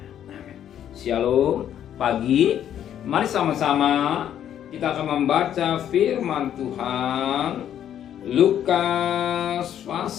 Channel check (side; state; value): right; quieter; 10.2 dB